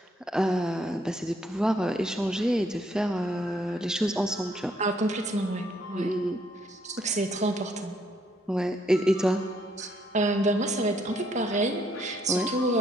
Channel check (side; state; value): both; normal; correlation 0.70